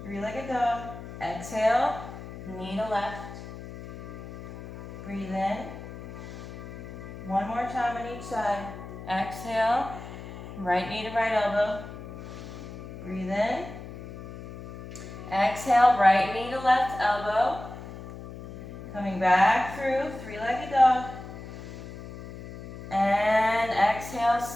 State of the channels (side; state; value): left; noise; hum, 12 dB below the sound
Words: three-legged dog. Exhale, knee to left. Breathe in. One more time on each side. Exhale, right knee to right elbow. Breathe in. Exhale, right knee to left elbow. Coming back through, three-legged dog. And exhale,